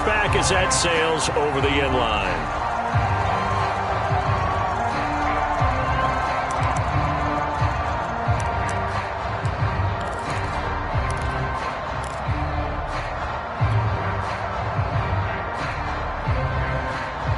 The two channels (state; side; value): identical; both; correlation 1.00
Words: as that sails over the end line.